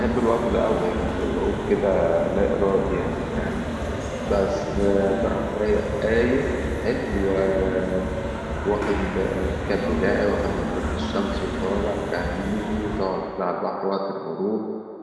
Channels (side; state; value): both; identical; correlation 1.00